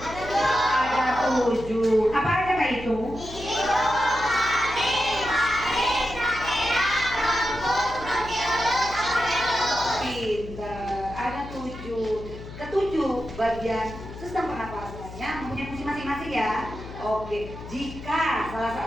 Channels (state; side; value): noise; left; hum, 13 dB below the sound